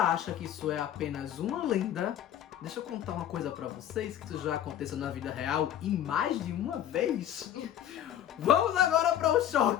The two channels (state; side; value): quieter; right; 10.9 dB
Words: que isso é apenas uma lenda, deixa eu contar uma coisa pra vocês, que isso já aconteceu na vida real e mais de uma vez. Vamos agora para o